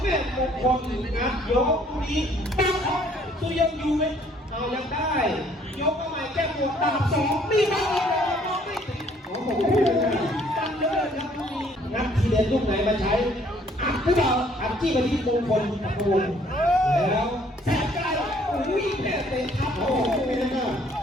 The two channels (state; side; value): normal; both; correlation 0.61